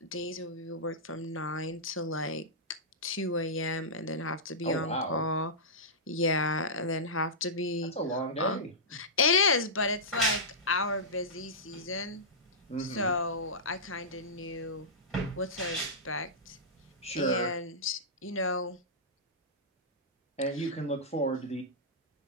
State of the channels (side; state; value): both; normal; correlation -0.14